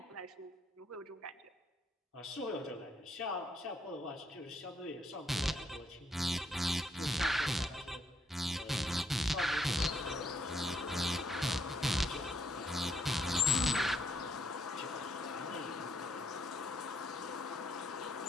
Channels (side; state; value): both; normal; correlation 0.73